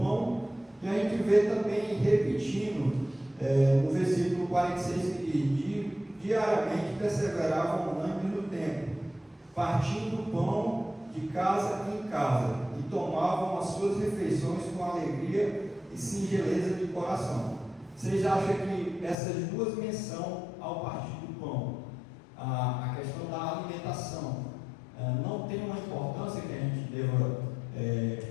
e a gente vê também repetindo no versículo 46, que diariamente perseveravam unânimes no templo, partindo o pão de casa em casa, e tomavam as suas refeições com alegria e singeleza de coração. Vocês acham que essas duas menções ao partir do pão, a questão da alimentação, não tem uma importância que a gente deva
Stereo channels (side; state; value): right; drops out; at 19.2 s